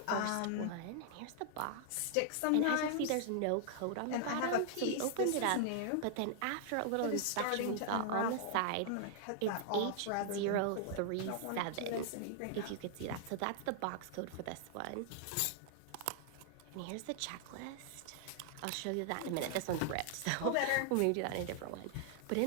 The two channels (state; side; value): different; both; correlation 0.00